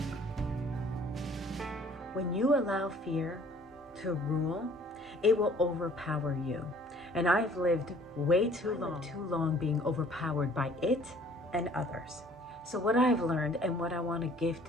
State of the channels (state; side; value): normal; both; correlation 0.55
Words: When you allow fear to rule, it will overpower you. And I've lived way too long being overpowered by it and others. So what I've learned and what I want to